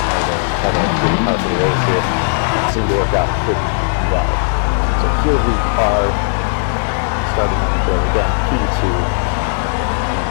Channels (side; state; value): right; silent; digital silence